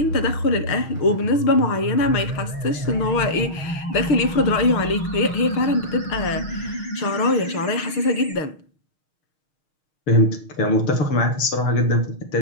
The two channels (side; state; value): right; late; 6.4 ms